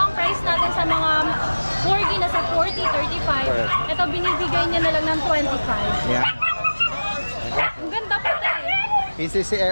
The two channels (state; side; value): inverted; both; correlation -1.00